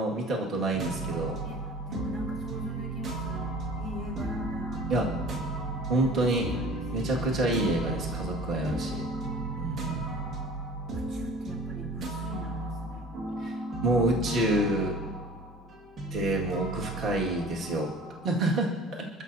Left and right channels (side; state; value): both; normal; correlation 0.44